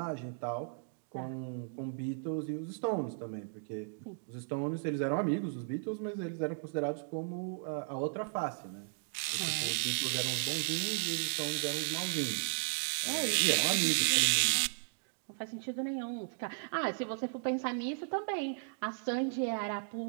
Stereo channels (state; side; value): silent; left; digital silence